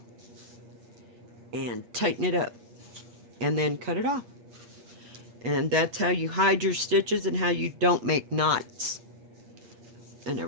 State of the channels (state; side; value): late; left; 8.1 ms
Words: and tighten it up and then cut it off. And that's how you hide your stitches and how you don't make knots and